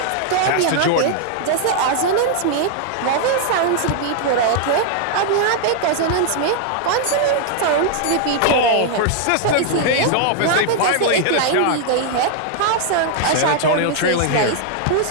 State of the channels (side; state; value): both; different; correlation 0.00